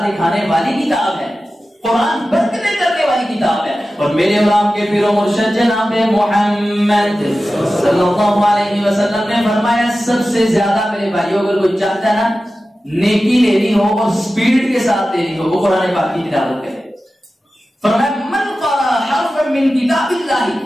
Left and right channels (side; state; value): both; normal; correlation 0.94